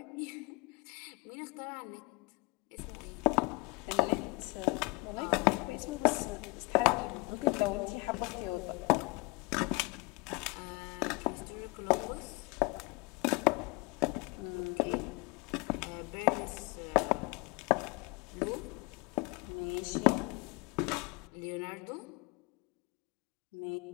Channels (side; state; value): right; quieter; 27.4 dB